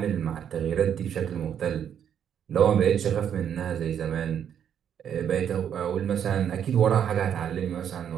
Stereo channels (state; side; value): quieter; left; 8.9 dB